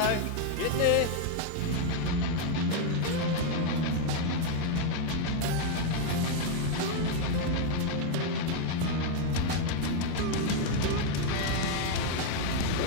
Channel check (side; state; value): both; different; correlation 0.01